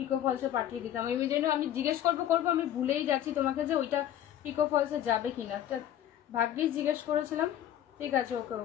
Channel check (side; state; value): right; quieter; 11.3 dB